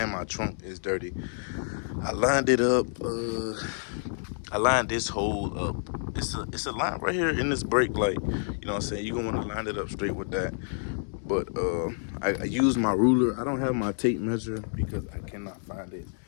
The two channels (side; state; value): right; silent; digital silence